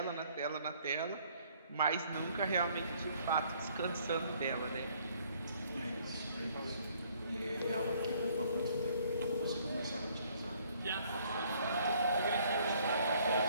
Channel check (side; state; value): both; inverted; correlation -0.62